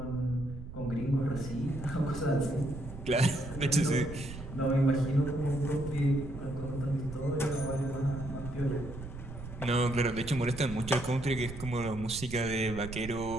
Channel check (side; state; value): right; noise; rumble, 11 dB below the sound